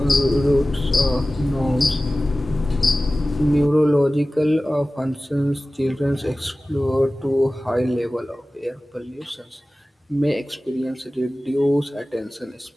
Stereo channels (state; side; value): normal; both; correlation 0.96